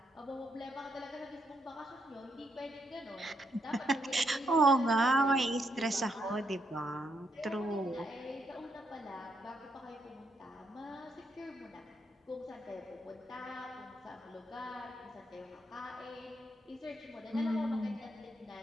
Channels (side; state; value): both; normal; correlation 0.77